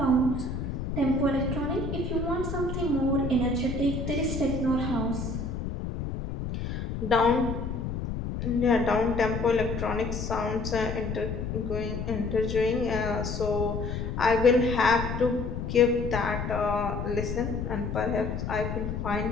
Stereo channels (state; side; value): noise; left; rumble, 4 dB below the sound